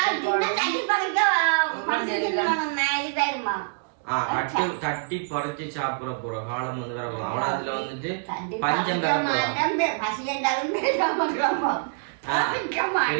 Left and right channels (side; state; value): left; silent; digital silence